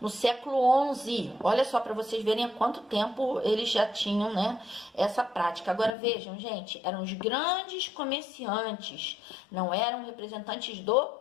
século XI. Olha só, para vocês verem há quanto tempo eles já tinham, né, essa prática. Agora vejam, gente, eram os grandes comerciantes, não eram representantes do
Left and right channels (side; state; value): right; drops out; at 6.0 s